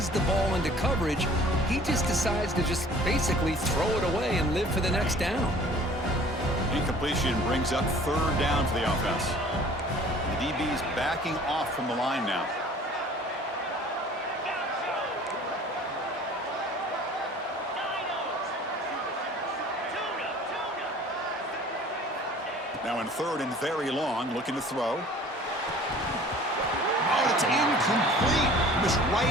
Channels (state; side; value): normal; both; correlation 0.49